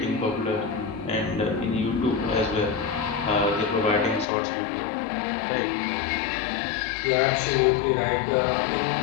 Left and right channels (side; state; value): right; drops out; at 4.2 s